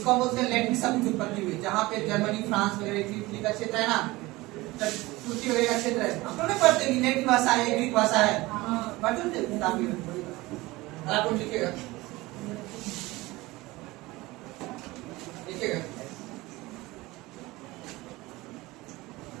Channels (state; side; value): quieter; left; 20.4 dB